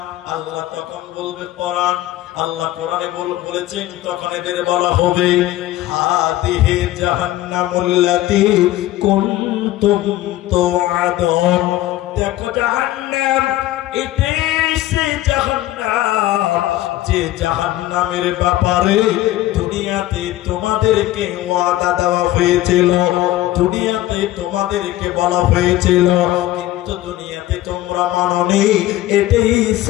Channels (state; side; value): quieter; right; 15.3 dB